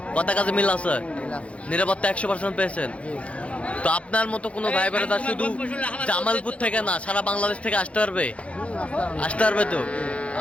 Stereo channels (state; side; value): late; right; 0.062 ms